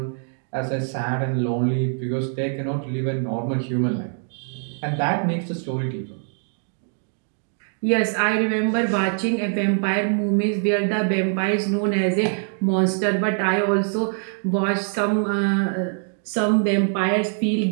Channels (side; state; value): left; silent; 56 dB below the other